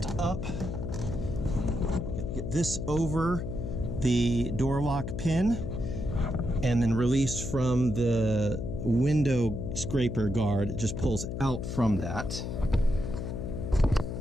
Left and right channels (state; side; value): noise; left; hum, 5 dB below the sound